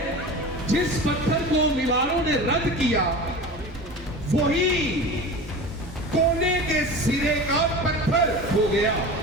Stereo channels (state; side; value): normal; both; correlation 0.33